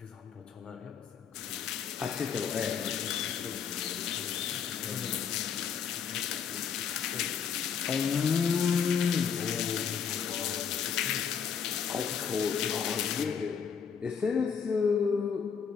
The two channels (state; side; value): quieter; right; 7.0 dB